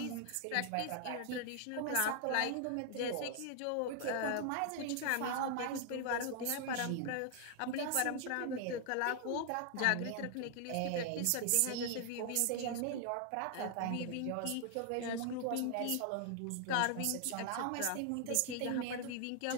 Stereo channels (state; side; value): different; both; correlation 0.00